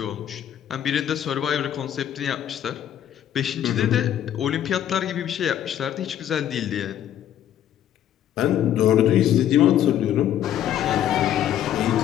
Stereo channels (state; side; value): quieter; right; 10.8 dB